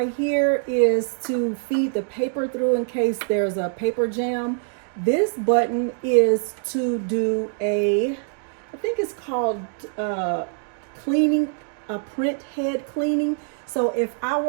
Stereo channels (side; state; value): left; silent; 63 dB below the other